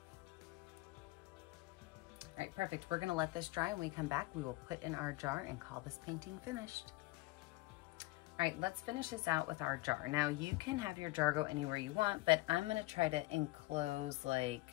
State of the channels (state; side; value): quieter; right; 20.7 dB